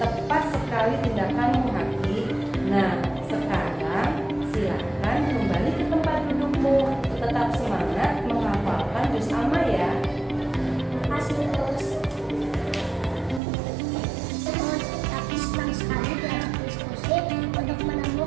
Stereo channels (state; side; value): drops out; left; at 13.4 s